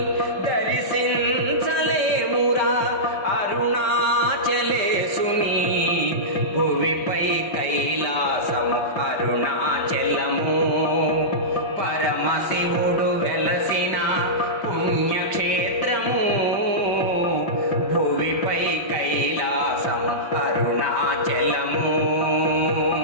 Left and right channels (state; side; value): late; right; 5.1 ms